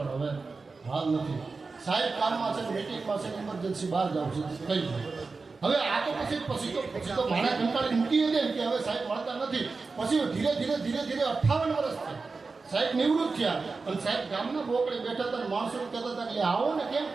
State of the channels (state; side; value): quieter; left; 4.2 dB